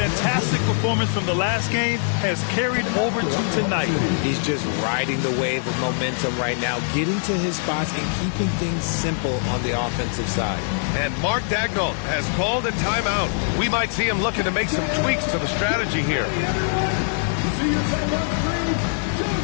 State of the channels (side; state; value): right; silent; 59 dB below the other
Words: performance from the last game has carried over to tonight. He's just riding the wave of momentum right now, getting to his spots and keeping things simple on the offensive side. And Mark Daigneault has called a timeout. We might see him looking to make some tweaks to the strategy here.